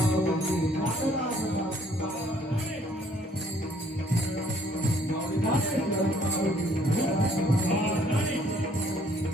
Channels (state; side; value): normal; both; correlation 0.62